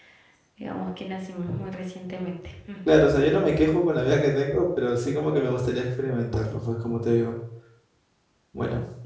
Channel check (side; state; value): both; identical; correlation 1.00